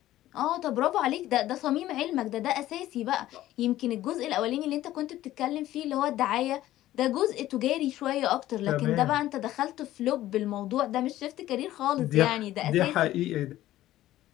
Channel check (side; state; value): right; quieter; 14.5 dB